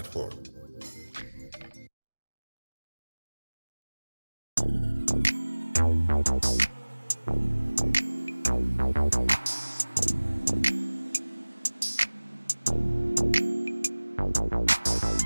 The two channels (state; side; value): inverted; both; correlation -1.00